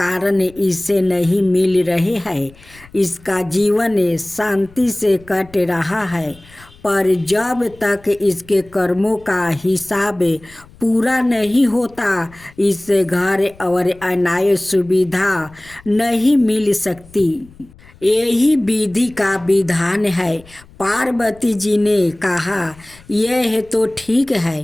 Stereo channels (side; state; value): left; noise; rumble, 24 dB below the sound